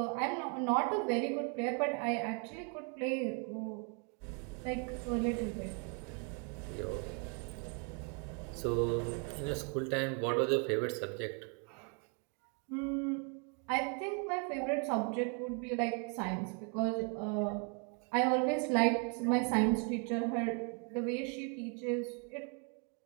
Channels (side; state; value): left; quieter; 38.4 dB